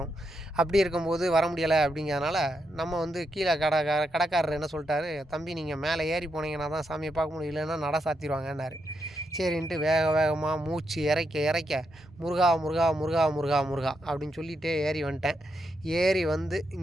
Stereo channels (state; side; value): normal; both; correlation 0.82